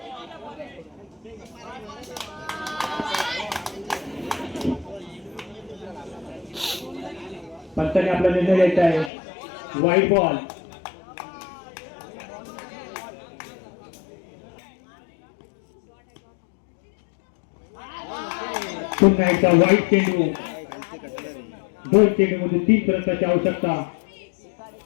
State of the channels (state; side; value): drops out; right; at 9.1 s